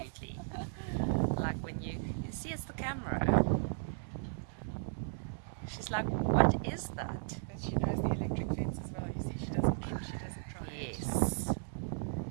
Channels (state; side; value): silent; left; digital silence